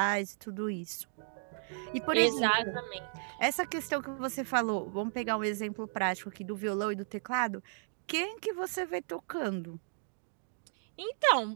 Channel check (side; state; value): left; silent; digital silence